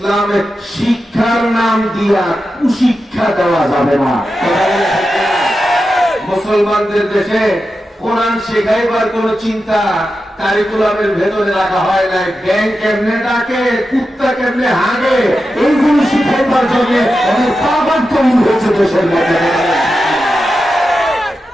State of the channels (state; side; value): normal; both; correlation 0.90